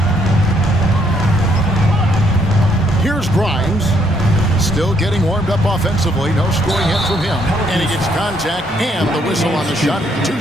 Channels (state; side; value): normal; both; correlation 0.70